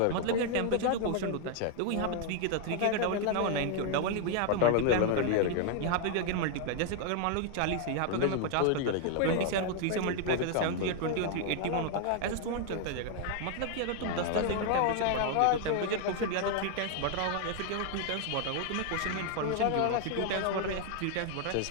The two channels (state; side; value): different; both; correlation 0.00